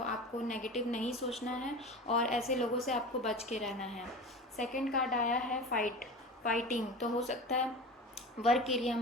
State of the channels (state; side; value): normal; both; correlation 0.32